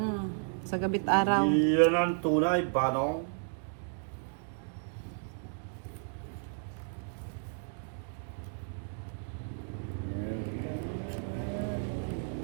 Sa gabit araw. Iyan ang tunay, Banong.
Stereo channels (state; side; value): silent; left; 56 dB below the other